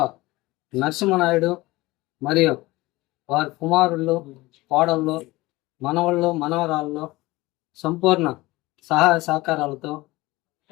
నరసింహనాయుడు మరియు వారి కుమారుళ్ళు, కోడళ్ళు, మనవళ్ళు, మనవరాళ్ళు సంపూర్ణ సహాయ సహకారాలతో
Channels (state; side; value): quieter; right; 20.1 dB